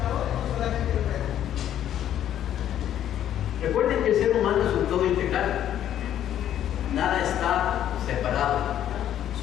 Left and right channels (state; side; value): quieter; right; 10.9 dB